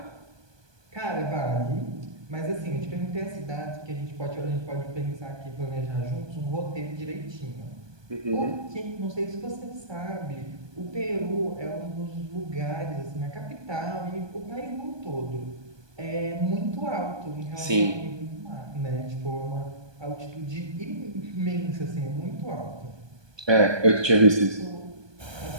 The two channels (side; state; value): left; late; 1.2 ms